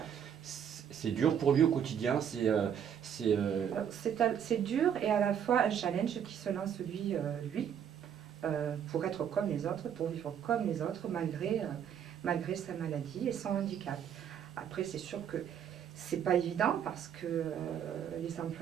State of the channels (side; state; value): left; quieter; 8.7 dB